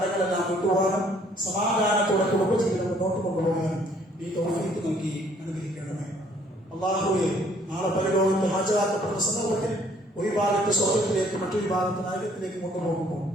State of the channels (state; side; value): normal; both; correlation 0.62